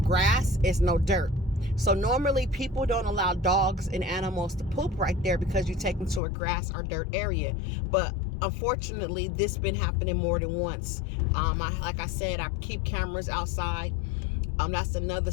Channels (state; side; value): drops out; right; at 6.2 s